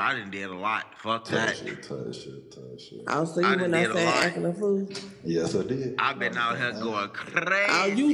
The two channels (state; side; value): identical; both; correlation 1.00